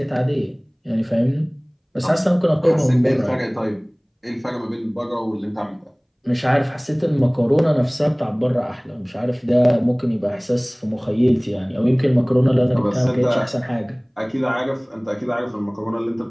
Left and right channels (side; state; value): both; identical; correlation 1.00